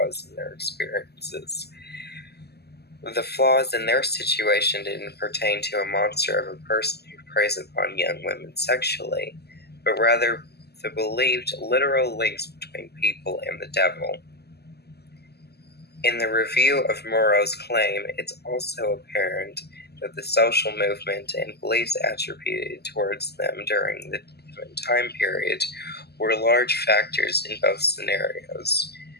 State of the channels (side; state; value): right; late; 0.47 ms